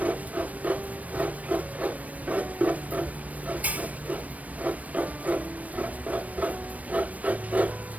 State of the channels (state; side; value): late; left; 0.070 ms